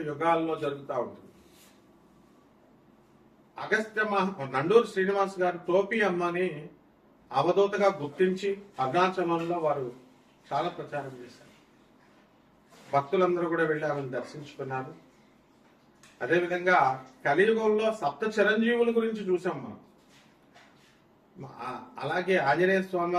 యుగాల్లో జరుగుతూ ఉంటుంది. నండూరు శ్రీనివాస్ గారు టోపీ అమ్మని అవధూతగా గుర్తించి అరుణాచలంలో వారు చాలా ప్రచారం చేశారు. భక్తులందరూ కూడా వెళ్ళి ఆమెను దర్శించుకున్నారు. అదేవిధంగా కలియుగంలో సప్త చిరంజీవుల గురించి చూసాం మనం. అలాగే ఆంజనేయ స్వామి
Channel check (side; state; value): both; identical; correlation 1.00